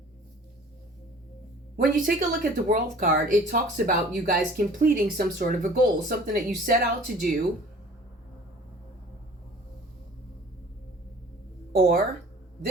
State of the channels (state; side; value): normal; both; correlation 0.48